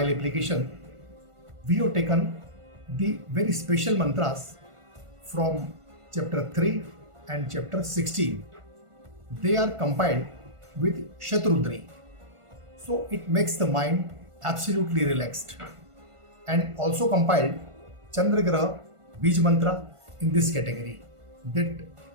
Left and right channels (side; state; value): left; late; 1.5 ms